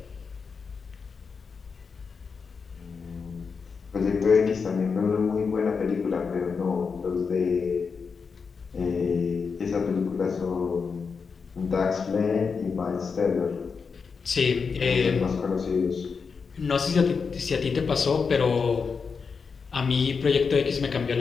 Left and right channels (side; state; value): right; quieter; 5.4 dB